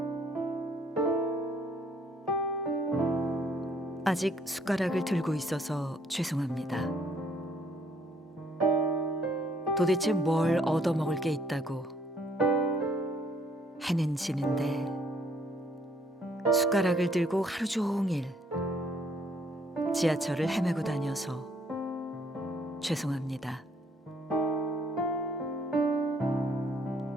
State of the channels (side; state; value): both; normal; correlation 0.65